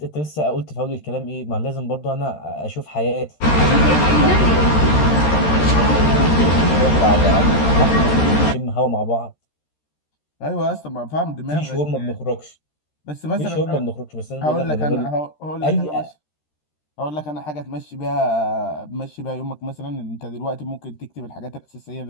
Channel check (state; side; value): late; right; 13 ms